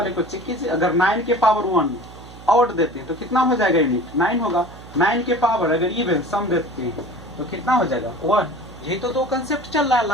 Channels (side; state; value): right; noise; hum, 18 dB below the sound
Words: को चेक कीजिए, अगर 9 के पावर 1 ऑड देते हैं तो कितना हो जाएगा यूनिट 9 होगा, 9 के पावर अगर इवन सम देते हैं तो कितना हो जाएगा 1। यही तो दो कंसेप्ट चल रहा है